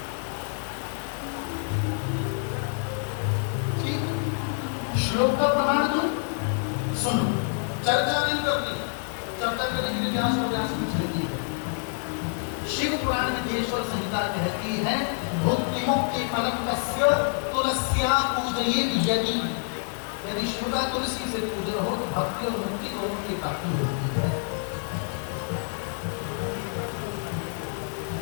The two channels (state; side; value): silent; right; 60 dB below the other